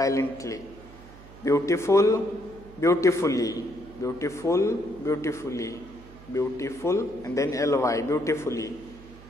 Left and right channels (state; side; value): noise; right; hum, 19 dB below the sound